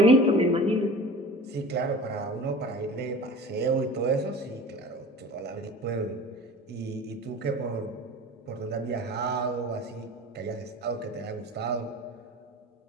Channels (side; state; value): both; normal; correlation 0.39